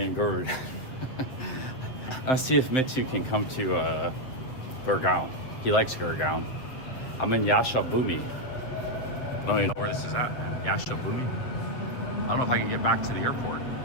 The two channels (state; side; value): late; right; 7.7 ms